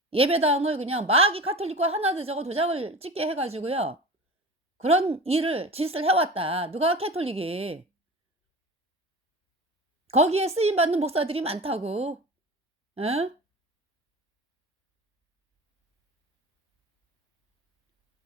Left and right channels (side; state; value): both; normal; correlation 0.34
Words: 예배당을 그냥 마귀 카톨릭과 하나 되자고 도장을 찍게 해 가지고요. 그런 짓을 해 왔다. 누가 캐톨릭이. 거기에 쓰임 받는 목사들이 많다고. 예?